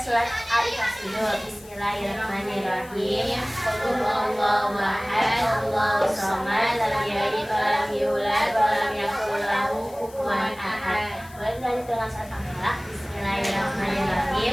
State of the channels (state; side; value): noise; left; hiss, 22 dB below the sound